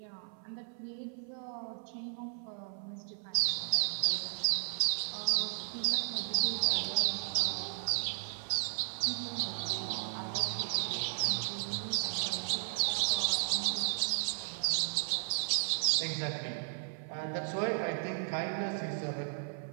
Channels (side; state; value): left; silent; 55 dB below the other